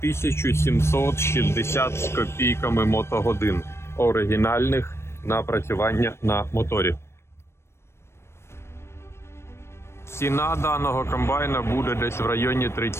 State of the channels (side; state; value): right; late; 0.13 ms